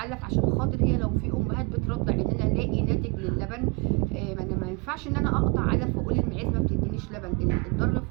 عشان خاطر هي لو في أمهات بترضع إن أنا ألاقي ناتج للبن. ما ينفعش إن أنا أقطع علف وأقول المعيز ما بتدينيش لبن. الضر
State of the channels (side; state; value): left; quieter; 30.0 dB